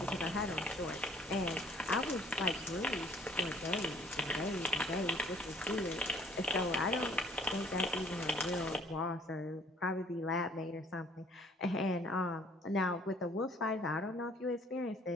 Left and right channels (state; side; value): normal; both; correlation 0.57